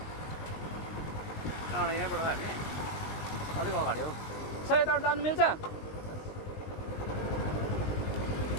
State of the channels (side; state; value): right; late; 19 ms